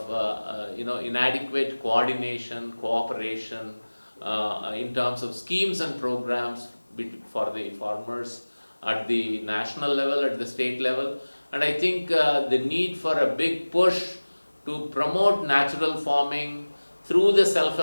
inadequate coordination, cooperation in terms of schemes and programs for the farmers at the national level, at the state level. And I think the need for a big push to promote natural farming through the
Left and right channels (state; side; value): inverted; both; correlation -1.00